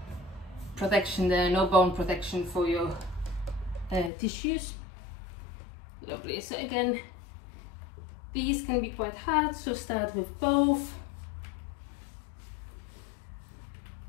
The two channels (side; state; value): right; drops out; at 4.1 s